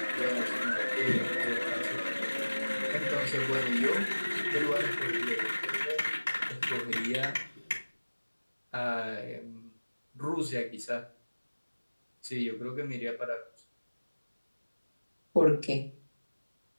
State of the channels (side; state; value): both; inverted; correlation -1.00